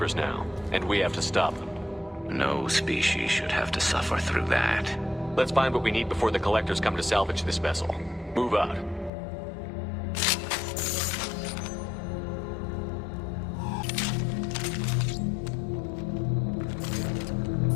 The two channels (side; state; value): right; drops out; at 9.1 s